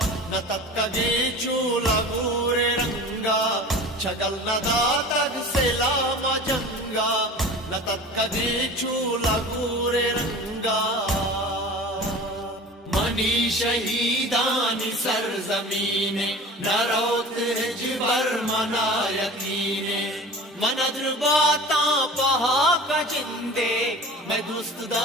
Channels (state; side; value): normal; both; correlation 0.38